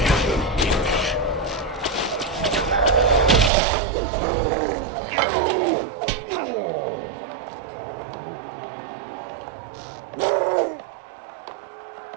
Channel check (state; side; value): drops out; left; at 3.5 s